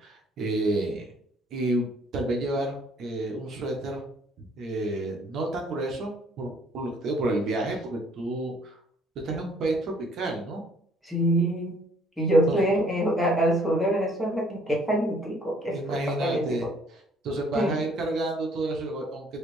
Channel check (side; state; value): both; normal; correlation 0.61